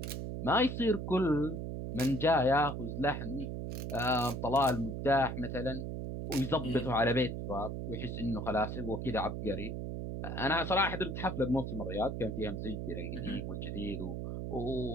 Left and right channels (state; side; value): noise; right; hum, 4 dB below the sound